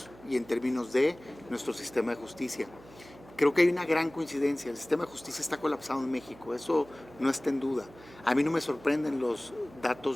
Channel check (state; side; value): noise; right; hum, 21 dB below the sound